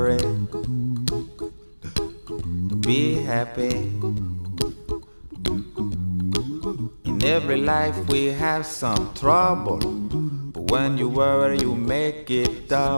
be happy. In every life we have some trouble, but when you worry you make it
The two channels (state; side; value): inverted; both; correlation -1.00